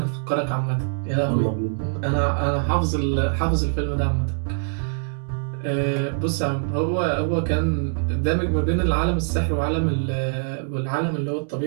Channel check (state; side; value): silent; left; digital silence